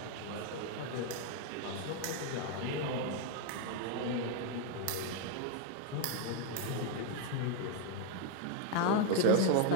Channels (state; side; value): different; both; correlation 0.01